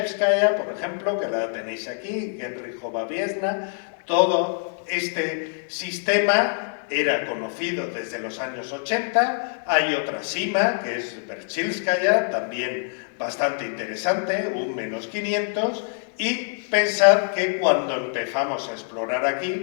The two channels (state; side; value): silent; right; 62 dB below the other